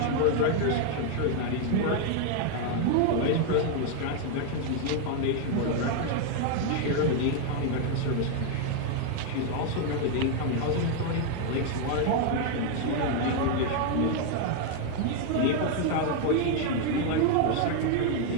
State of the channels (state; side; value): different; both; correlation 0.00